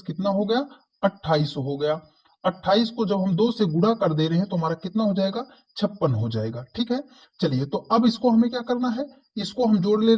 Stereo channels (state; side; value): identical; both; correlation 1.00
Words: कितना हो गया 28 हो गया। 28 को जब हम 2 से गुणा कर दे रहे हैं तो हमारा कितना हो जाएगा 56 हो जाएगा, ठीक है। चलिए तो अब इसको हमें क्या करना है, इसको हम जोड़ ले